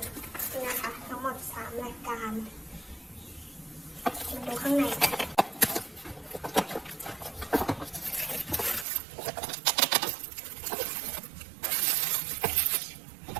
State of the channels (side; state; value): left; drops out; at 8.8 s